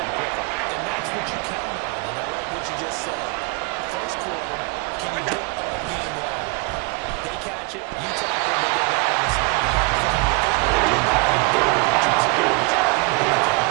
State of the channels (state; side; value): quieter; left; 29.2 dB